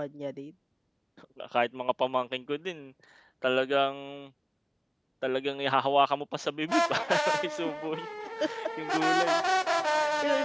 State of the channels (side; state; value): both; identical; correlation 1.00